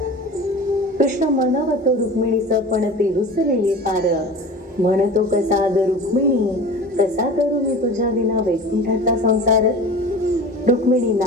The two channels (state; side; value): normal; both; correlation 0.36